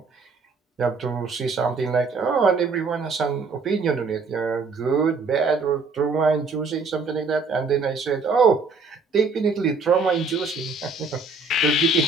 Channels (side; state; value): left; quieter; 4.1 dB